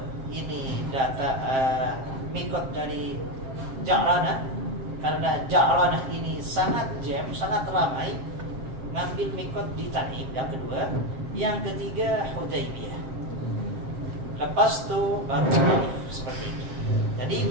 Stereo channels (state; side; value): late; left; 7.5 ms